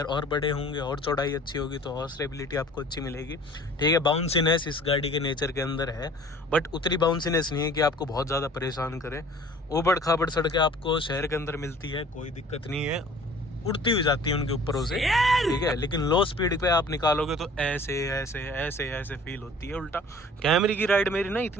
और बड़े होंगे और चौड़ाई अच्छी होगी तो और स्टेबिलिटी आपको अच्छी मिलेगी, ठीक है। बाउंसीनेस इस गाड़ी के नेचर के अंदर है, बट उतनी बाउंसीनेस नहीं है कि आपको बहुत ज़्यादा परेशान करे। उबड़ खाबड़ सड़कें आपको शहर के अंदर मिलती है, कोई दिक्कत नहीं है, उड़ती हुई जाती है उनके ऊपर से, ठीक है। लेकिन लो स्पीड पे आप निकालोगे तो ऐसे ऐसे ऐसे ऐसे फील होती है। उल्टा कैमरे की राइड मेरी ना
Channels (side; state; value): both; normal; correlation 0.49